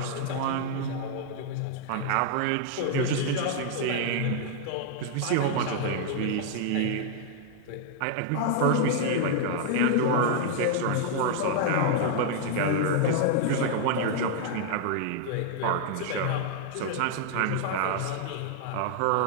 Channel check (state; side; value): different; both; correlation 0.00